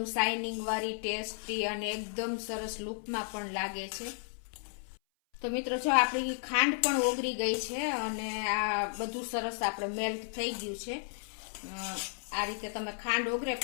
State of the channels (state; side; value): silent; right; 55 dB below the other